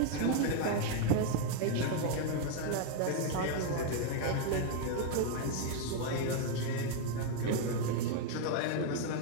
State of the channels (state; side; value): different; both; correlation 0.00